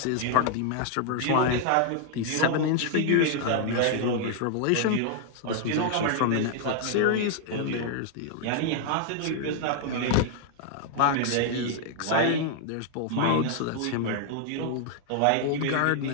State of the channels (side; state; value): both; different; correlation 0.00